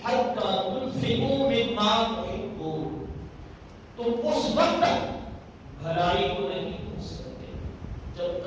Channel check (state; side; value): identical; both; correlation 1.00